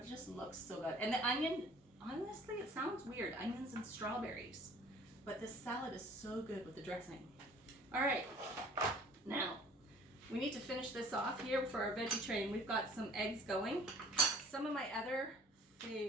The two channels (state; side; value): normal; both; correlation 0.51